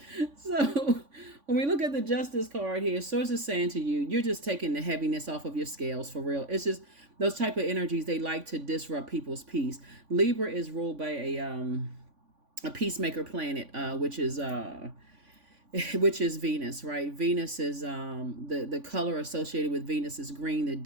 So when we look at the Justice card here, Source is saying to you, you're just taking the heaviness off of your scales for real. It's just those type of energies, they like to disrupt people's peace. Libra is ruled by a peacemaker planet, which is Venus, right? Venus is the color associated with Venus is green. The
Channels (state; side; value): late; left; 3.5 ms